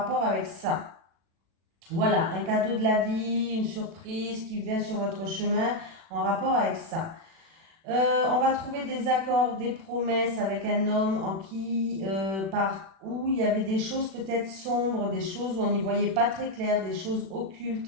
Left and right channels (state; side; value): late; left; 36 ms